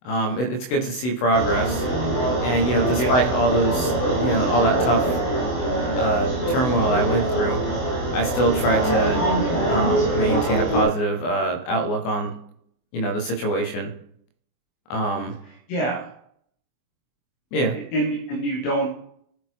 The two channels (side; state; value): right; late; 24 ms